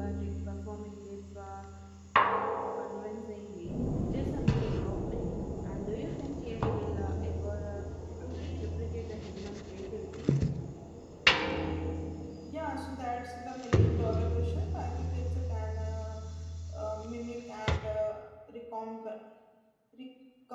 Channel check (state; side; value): identical; both; correlation 1.00